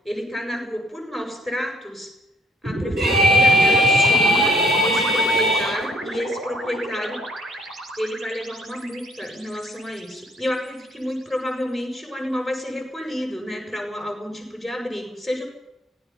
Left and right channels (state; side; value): normal; both; correlation 0.62